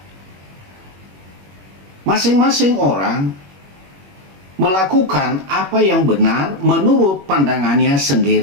Masing-masing orang melakukan apa yang benar menurut pandangannya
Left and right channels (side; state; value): left; late; 21 ms